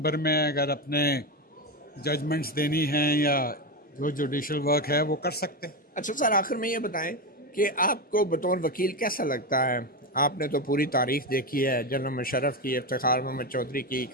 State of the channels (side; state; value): both; normal; correlation 0.14